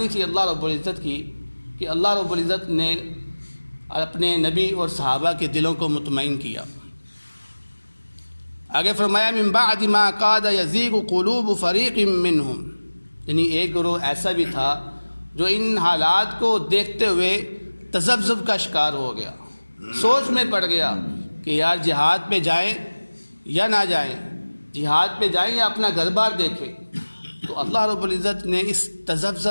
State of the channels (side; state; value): both; inverted; correlation -1.00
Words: تھی اللہ رب العزت کی کہ اللہ رب العزت نے اپنے نبی اور صحابہ کے دلوں کو مطمئن کیا۔ آگے فرمایا من بعد ما کاد یزیغ قلوب فریق منہم، یعنی ایک گروہ ایسا بھی تھا جو ان حالات کو دیکھتے ہوئے تذبذب کا شکار ہو گیا، سوچ میں پڑ گیا کہ یار جہاد پہ جائیں یا نہ جائیں، جہاد پہ جائیں یا اپنا گھر بار دیکھیں۔ تو اللہ رب العزت نے اس